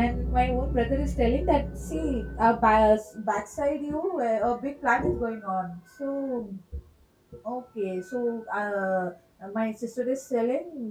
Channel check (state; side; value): identical; both; correlation 1.00